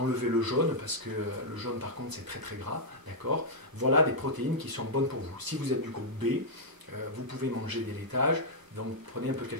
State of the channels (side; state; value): left; late; 1.0 ms